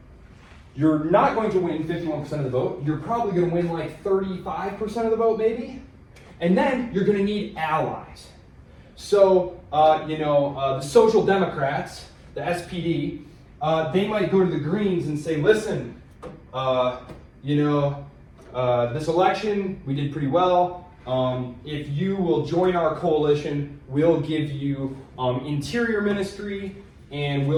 you're not going to win 51% of the vote. You're probably going to win like 35% of the vote, maybe. And then you're going to need allies. So, the Social Democrats, the SPD, they might go to the Greens and say, listen, this election, we did pretty well. If you will join our coalition, we'll give you Interior Ministry, and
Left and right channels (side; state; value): both; identical; correlation 1.00